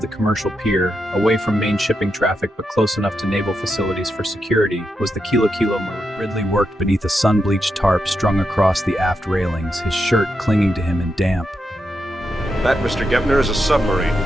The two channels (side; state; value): both; normal; correlation 0.85